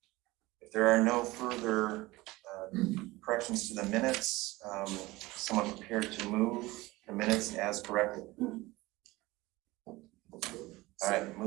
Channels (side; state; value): left; quieter; 20.1 dB